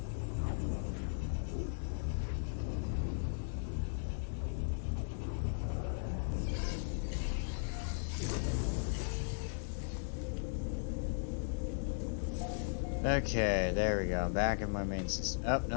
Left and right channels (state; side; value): silent; right; 53 dB below the other